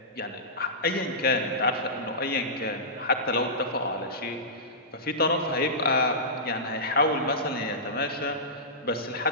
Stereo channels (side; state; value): both; normal; correlation -0.17